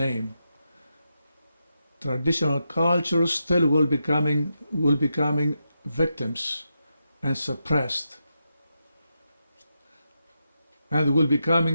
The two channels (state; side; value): inverted; both; correlation -0.86